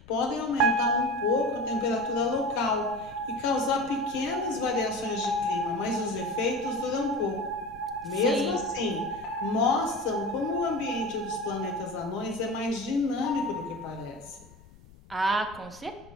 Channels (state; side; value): noise; left; rumble, 23 dB below the sound